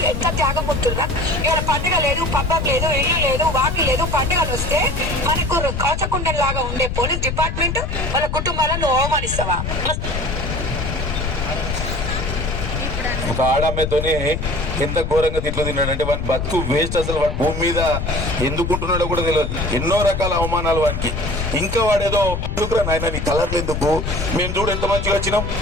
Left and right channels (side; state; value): left; noise; rumble, 3 dB below the sound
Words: ఎంత త్యాగం ఉంటుందా. ఇవాళ పండుగ లేదు, పబ్బం లేదు, ఇల్లు లేదు, వాకి లేదు. పండుగలు వస్తే మనకు కవచకుండం లాగా ఉండే పోలీస్ డిపార్ట్మెంట్ వాళ్ళ కుటుంబాలను అవమానిస్తావా? ఒక ఆడమ్మతోనే ఎంత ఘోరంగా తిట్లు తిన్నాడంటే వాడి బతుకు వేస్ట్. అసలు వాడు భూమి మీద ఎందుకుంటున్నాడో కూడా తెలియదు. ఎన్నో రకాల అవమానాలు వానికి. ఇంకా వాడేదో ఎందుకురా నాయన నీ కలర్లు ఎందుకు, మేము చూడు ఎంత మంచిగా వచ్చినాం,